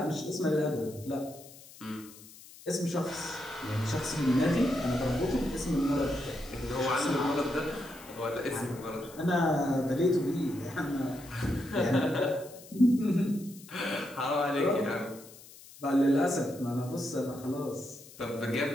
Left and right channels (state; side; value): noise; left; hiss, 20 dB below the sound